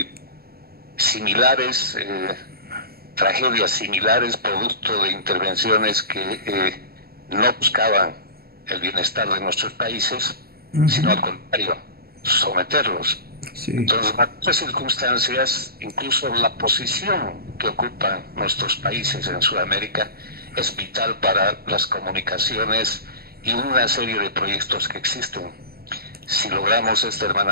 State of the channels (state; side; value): late; left; 0.45 ms